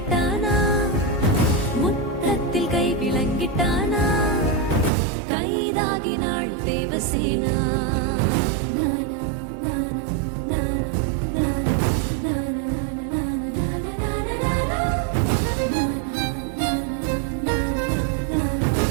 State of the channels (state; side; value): drops out; left; at 4.9 s